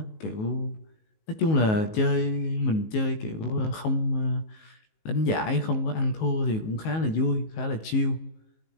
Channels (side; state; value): right; late; 19 ms